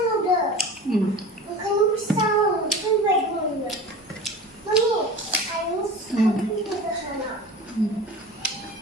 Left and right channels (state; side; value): normal; both; correlation 0.35